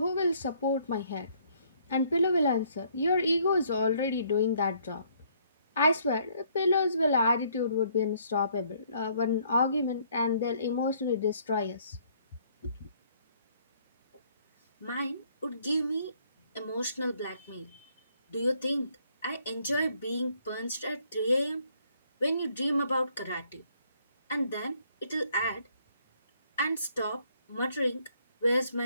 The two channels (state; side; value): inverted; both; correlation -0.65